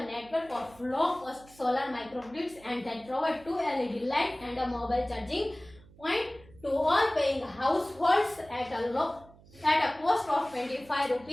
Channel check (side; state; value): right; noise; hum, 24 dB below the sound